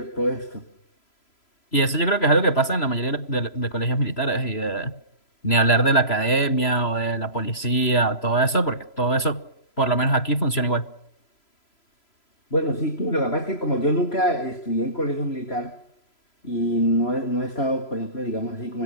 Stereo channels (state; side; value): late; right; 3.0 ms